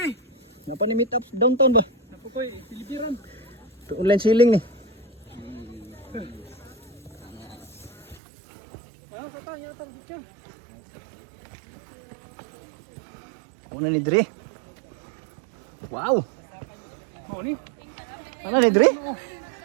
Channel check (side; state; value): left; drops out; at 8.2 s